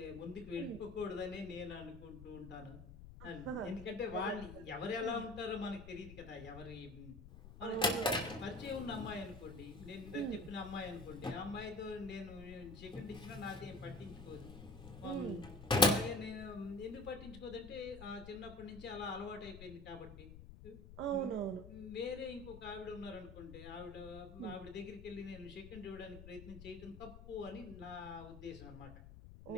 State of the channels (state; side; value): noise; left; rumble, 13 dB below the sound